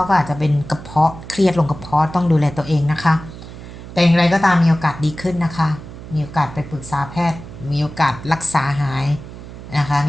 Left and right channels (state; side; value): noise; right; hum, 14 dB below the sound